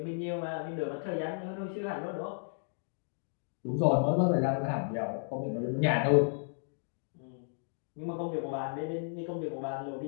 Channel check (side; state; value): right; silent; digital silence